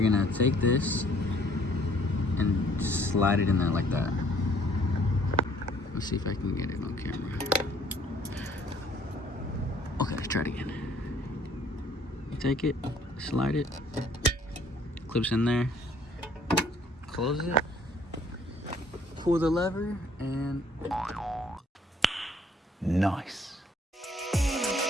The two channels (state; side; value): normal; both; correlation 0.60